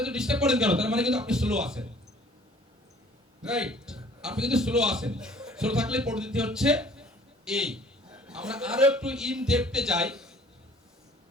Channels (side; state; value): both; normal; correlation 0.53